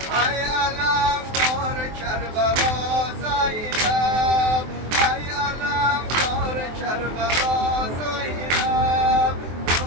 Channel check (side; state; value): left; late; 23 ms